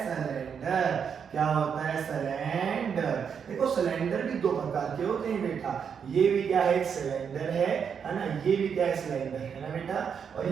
सिलेंडर। क्या होता है? सिलेंडर। देखो सिलेंडर भी दो प्रकार के होते हैं बेटा, ये भी क्या है? एक सिलेंडर है ना, ये भी क्या है? सिलेंडर है ना बेटा, और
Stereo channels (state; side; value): quieter; left; 7.0 dB